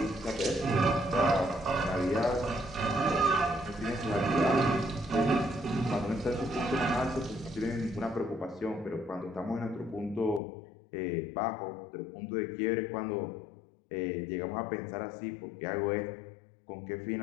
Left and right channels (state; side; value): drops out; right; at 10.4 s